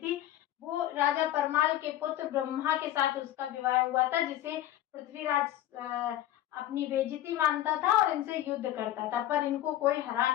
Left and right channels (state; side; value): quieter; right; 13.1 dB